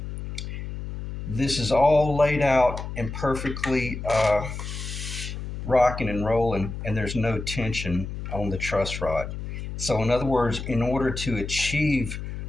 this is all laid out and perfectly rocking and rolling, and there's no tension on the truss rod. So, in other words, in order to achieve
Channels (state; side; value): noise; left; hum, 7 dB below the sound